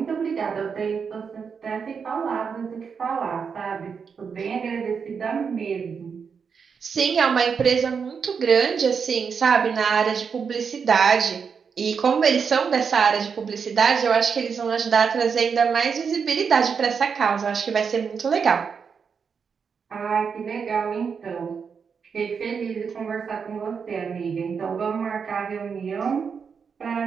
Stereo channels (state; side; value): quieter; left; 6.2 dB